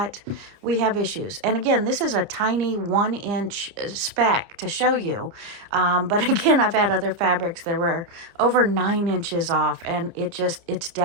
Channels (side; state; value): left; late; 30 ms